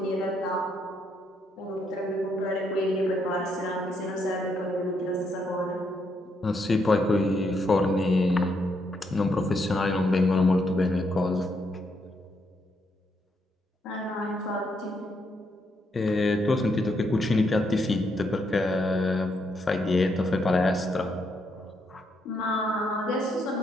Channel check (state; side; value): normal; both; correlation 0.76